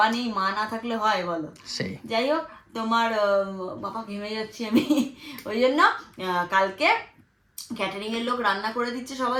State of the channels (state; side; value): identical; both; correlation 1.00